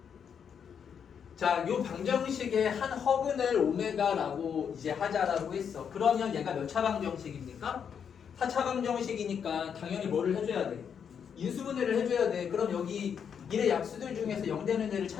자, 요 방정식의 한 허근을 오메가라고 이제 하자라고 했어. 그러면 얘가 몇 차 방정식입니까? 4차 방정식이니까 당연히 뭐를 해줘야 돼? 인수분해를 해줘야 돼. 그럼 여기 일의 약수들 중에서 0 되는 애를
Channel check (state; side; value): quieter; right; 7.5 dB